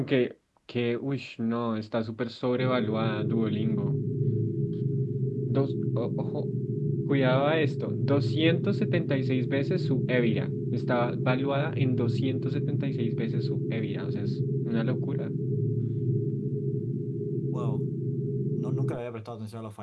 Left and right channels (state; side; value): identical; both; correlation 1.00